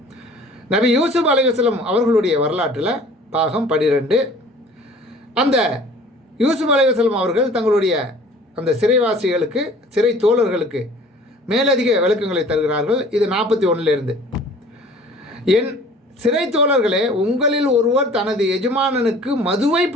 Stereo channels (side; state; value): both; normal; correlation 0.49